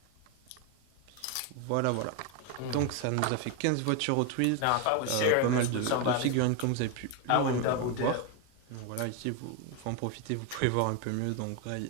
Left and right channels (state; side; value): different; both; correlation 0.01